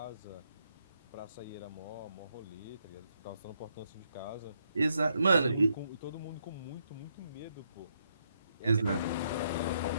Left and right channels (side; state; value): both; inverted; correlation -0.77